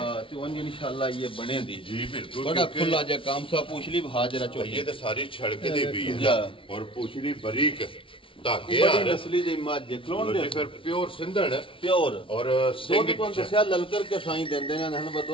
ਤੇ ਉਹ ਇਨਸ਼ਾਅੱਲਾ ਇਹ ਬਣੇ ਦੀ ਜੀ ਬਿਲਕੁਲ ਬੜਾ ਖੁੱਲਾ ਜਿਹਾ ਕੰਮ ਸਾ ਪੁੱਛਲੀ ਹਾਜ਼ਰਾ ਚੋਈ ਇਹ ਤਾਂ ਸਾਰੀ ਛੜਕ ਦੀ ਵੀ ਹੈ ਔਰ ਪੁੱਛਲੀ ਬਰੀਕ ਧਾਗੇ ਆ ਨਸਲੀ ਦੀ ਮੱਝ ਕਲੋਨ ਦੇ ਫਿਰ ਪਿਓਰ ਸਿੰਧਣ ਪਿਓਰ ਔਰ ਸਿੰਘ ਤੋਂ ਦੱਸਿਆ ਲਲਕਰ ਕੇ ਸਾਈਂ ਦਿੰਦੇ ਨੇ ਹਨ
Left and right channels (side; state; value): right; late; 0.25 ms